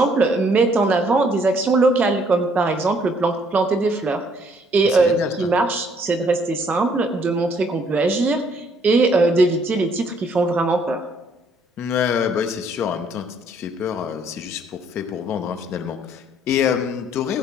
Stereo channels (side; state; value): both; normal; correlation 0.65